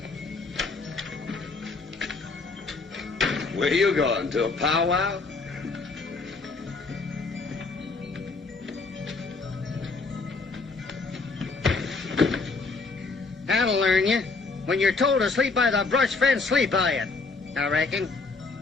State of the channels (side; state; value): right; quieter; 4.0 dB